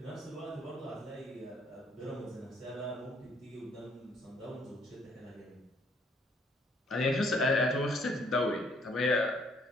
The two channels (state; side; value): normal; both; correlation 0.65